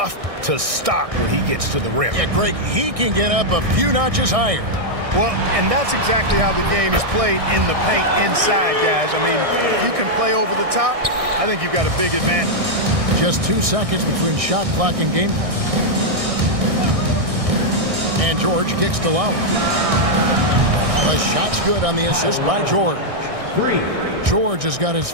to stop when he gets to the rim. Yeah, Greg, he can get up a few notches higher. Well, and that's exactly how the game is played in the paint inside, guys. I mean, if you can play over the top, I think you've got a big advantage. Just 2 seconds between shot clock and game clock. And George kicks to Lowry. The shot's good on the assist by George. 3. George has got his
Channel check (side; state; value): left; late; 1.6 ms